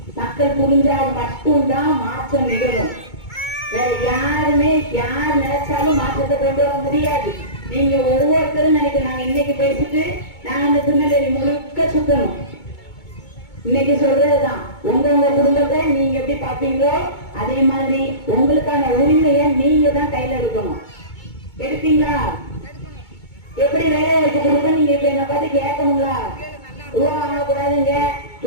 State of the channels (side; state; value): right; late; 2.2 ms